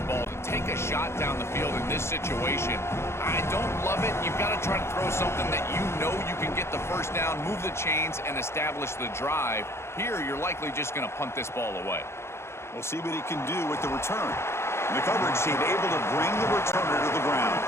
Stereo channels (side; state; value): right; late; 0.13 ms